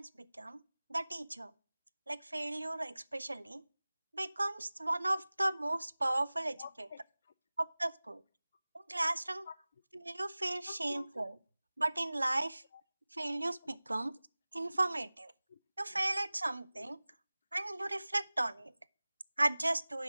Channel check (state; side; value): inverted; both; correlation -0.99